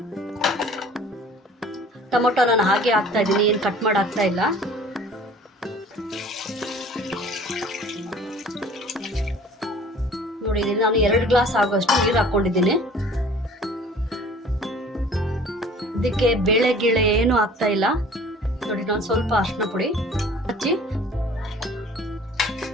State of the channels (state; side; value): normal; both; correlation 0.48